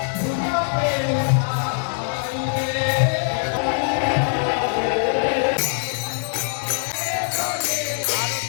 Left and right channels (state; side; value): silent; right; 57 dB below the other